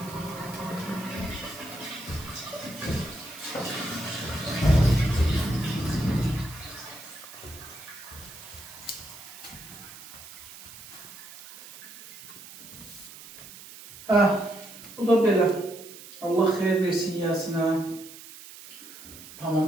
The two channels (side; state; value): right; noise; hiss, 16 dB below the sound